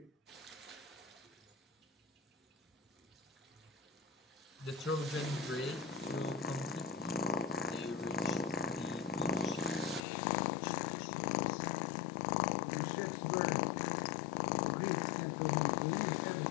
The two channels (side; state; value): right; drops out; at 10.1 s